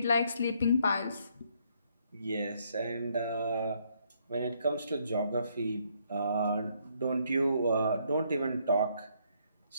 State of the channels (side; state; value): both; inverted; correlation -0.70